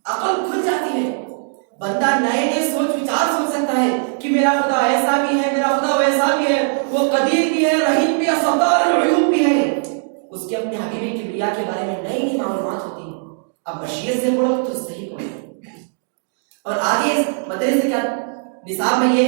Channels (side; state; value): left; silent; digital silence